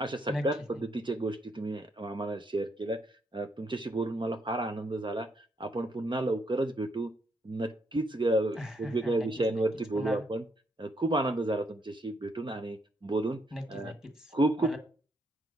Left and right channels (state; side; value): normal; both; correlation 0.74